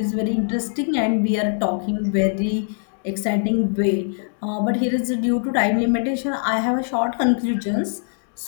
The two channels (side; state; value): right; silent; digital silence